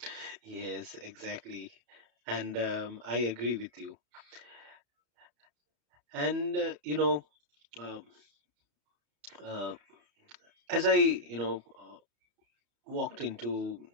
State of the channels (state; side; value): late; left; 34 ms